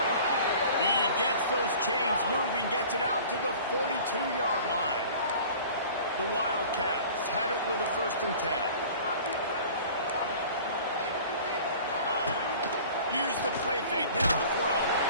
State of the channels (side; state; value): both; inverted; correlation -0.44